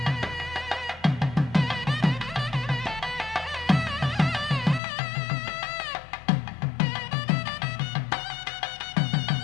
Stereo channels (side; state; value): right; drops out; at 4.8 s